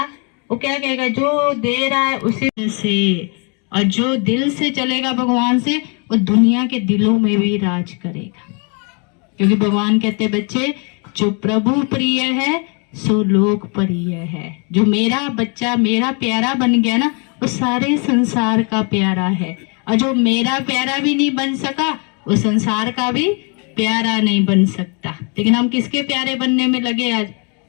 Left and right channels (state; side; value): quieter; right; 35.4 dB